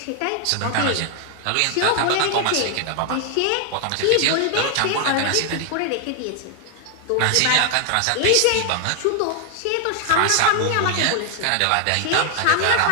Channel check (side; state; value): both; different; correlation 0.00